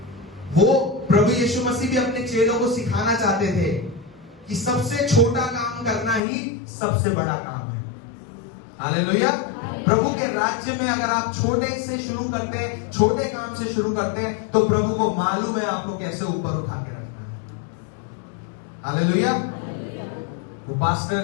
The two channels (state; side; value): drops out; right; at 6.2 s